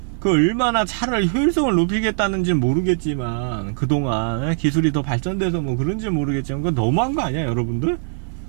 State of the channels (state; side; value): silent; left; 65 dB below the other